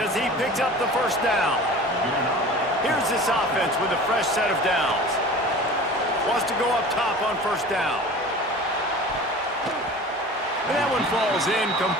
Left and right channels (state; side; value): normal; both; correlation 0.39